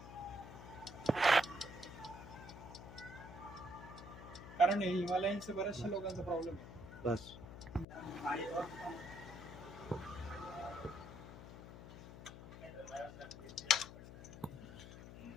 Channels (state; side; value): noise; left; hum, 13 dB below the sound